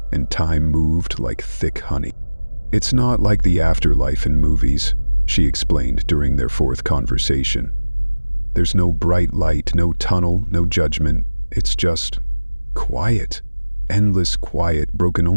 and time moved like thick honey. "It's not like the afterlife in movies," she explained during their 4th conversation. "There's no bright light, no tunnel, no judgment. It's just quiet. Endless quiet, broken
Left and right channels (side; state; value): both; inverted; correlation -1.00